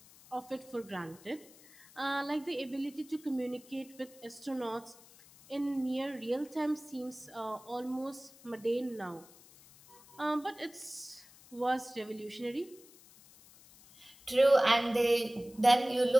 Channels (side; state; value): left; noise; hiss, 23 dB below the sound